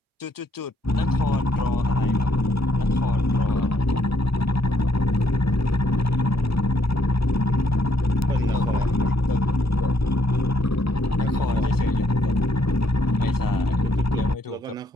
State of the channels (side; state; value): both; normal; correlation 0.71